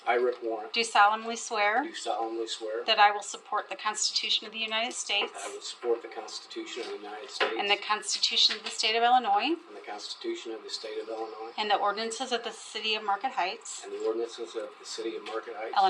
I, Rick Warren, do solemnly swear do solemnly swear that I will support the Constitution of the United States that I will support the Constitution of the United States and the Constitution of the State of Illinois and the Constitution of the State of Illinois and the ordinances of the City of Marquette Heights, and the ordinances of the City of Marquette Heights,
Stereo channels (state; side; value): identical; both; correlation 1.00